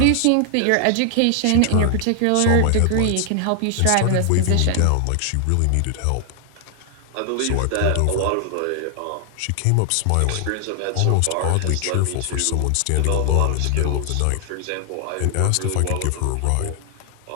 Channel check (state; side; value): different; both; correlation 0.00